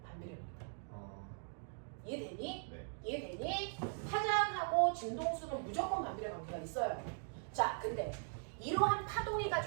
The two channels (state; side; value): silent; left; 51 dB below the other